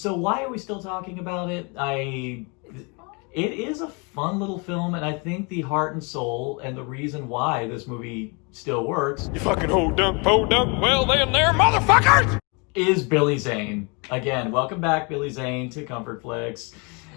why are we still talking about it? It is a fun little film, and I think the heart and soul and the reason why this movie still works... You fucking ho dunk, po dunk, well then there, motherfuckers! ...is Billy Zane. Again, welcome back, Billy Zane, to Comfort Flicks.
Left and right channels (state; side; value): quieter; right; 31.7 dB